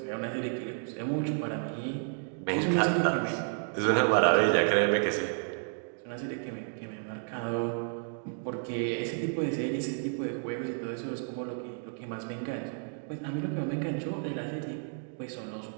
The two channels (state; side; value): silent; left; 57 dB below the other